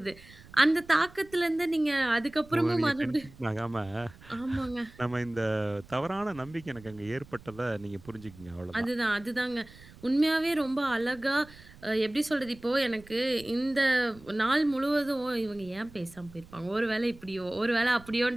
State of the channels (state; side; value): noise; right; rumble, 21 dB below the sound